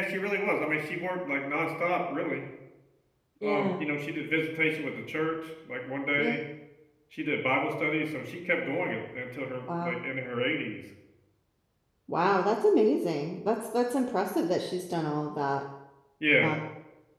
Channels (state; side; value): identical; both; correlation 1.00